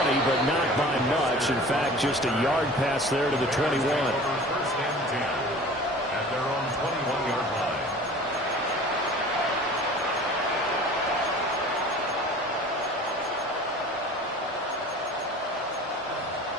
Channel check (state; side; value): normal; both; correlation 0.43